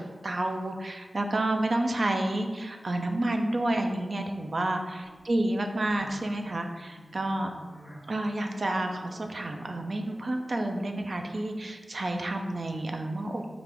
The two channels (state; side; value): normal; both; correlation 0.96